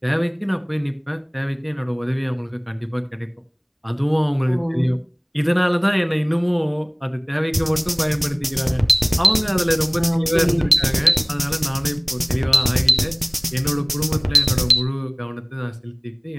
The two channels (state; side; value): identical; both; correlation 1.00